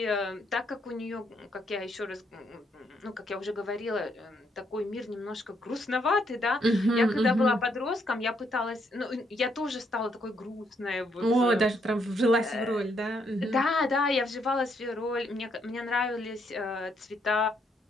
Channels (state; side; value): normal; both; correlation 0.74